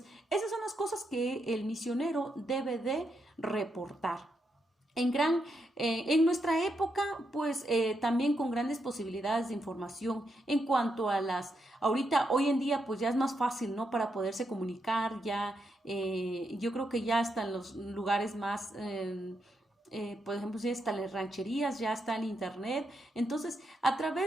esas son las cosas que el misionero debe de reportar. En nuestra época, pues también con grandes posibilidades de información en cuanto a hoy en día, pues ya es más fácil, ¿no? Para poderse comunicar, yo creo que ya están los lugares más por ejemplo, si están las rancherías, ya está el internet. Entonces, a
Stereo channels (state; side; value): normal; both; correlation 0.82